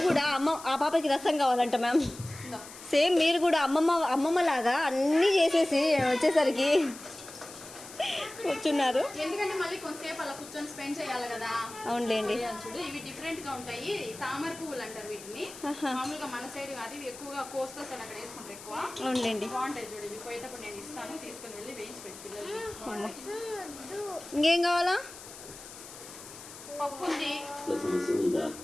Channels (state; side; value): noise; left; hiss, 15 dB below the sound